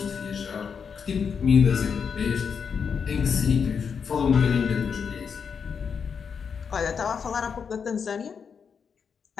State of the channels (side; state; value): right; quieter; 6.4 dB